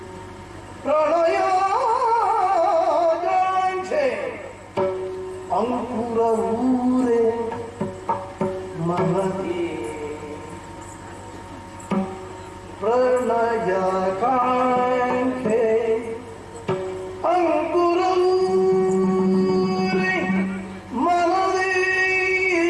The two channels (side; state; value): both; identical; correlation 1.00